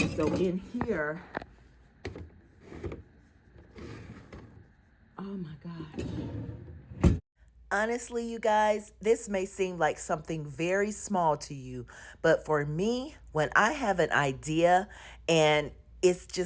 so in here, oh my gosh. Honestly, you guys, this may seem like something very small to you, but for me, when I have an idea and it's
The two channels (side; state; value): both; identical; correlation 1.00